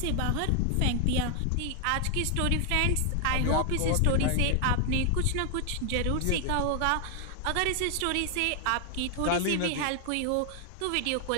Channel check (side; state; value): both; different; correlation 0.00